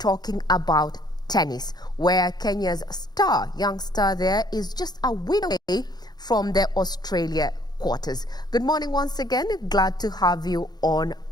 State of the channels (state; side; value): late; right; 0.20 ms